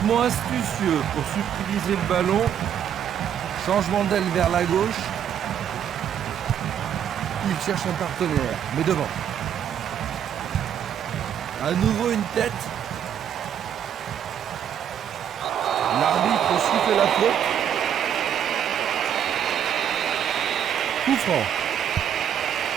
astucieux pour subtiliser le ballon. Changement d'aile vers la gauche. Il cherche un partenaire, mais devant. À nouveau une tête. L'arbitre siffle la faute. Coup franc.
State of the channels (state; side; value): quieter; left; 9.2 dB